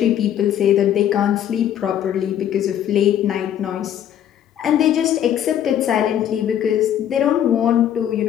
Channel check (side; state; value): right; quieter; 10.4 dB